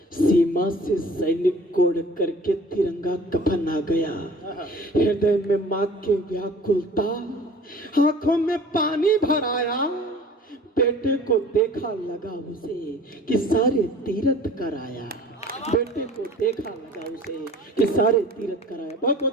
सीमा से सैनिक कोड़ करके तिरंगा कफन आ गया। हृदय में मां के व्याकुलता, आंखों में पानी भर आया, बेटे को देखा लगा उसे कि सारे तीरथ कराया। बेटे को देखा लगा उसे कि सारे तीरथ कराया। बहुत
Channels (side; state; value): both; normal; correlation 0.47